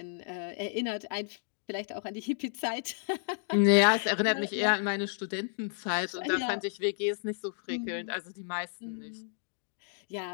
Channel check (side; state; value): right; silent; digital silence